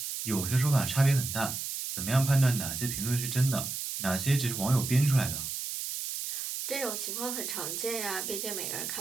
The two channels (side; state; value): right; noise; hiss, 4 dB below the sound